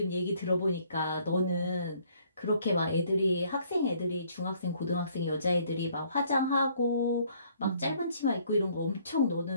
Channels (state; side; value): inverted; both; correlation -0.63